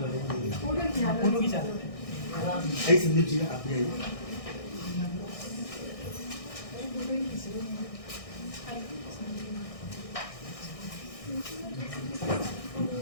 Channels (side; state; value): right; late; 1.6 ms